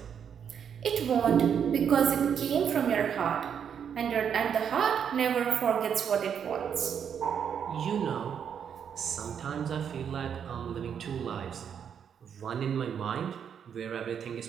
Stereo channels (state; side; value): quieter; left; 7.9 dB